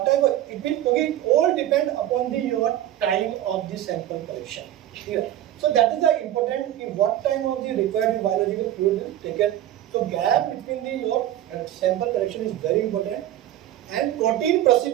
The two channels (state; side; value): quieter; left; 12.6 dB